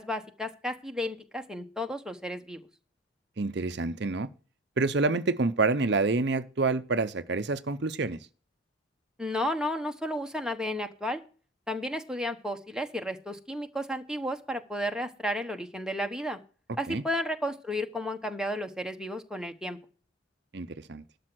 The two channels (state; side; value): normal; both; correlation 0.39